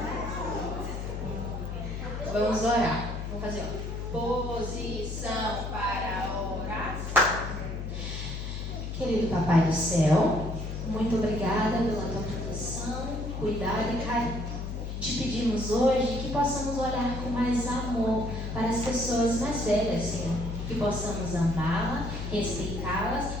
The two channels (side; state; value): left; noise; hum, 5 dB below the sound